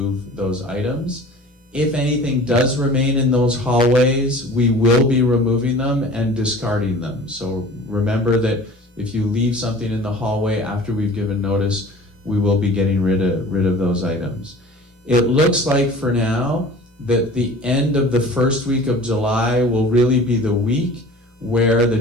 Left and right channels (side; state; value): both; normal; correlation 0.43